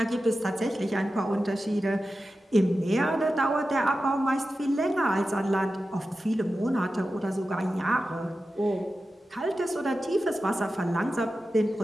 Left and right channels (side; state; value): both; normal; correlation 0.93